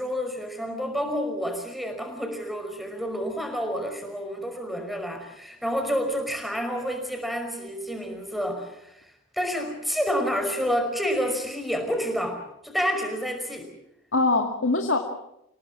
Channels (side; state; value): both; normal; correlation 0.49